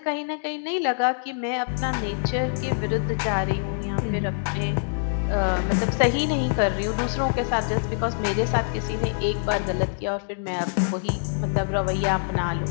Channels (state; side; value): silent; right; digital silence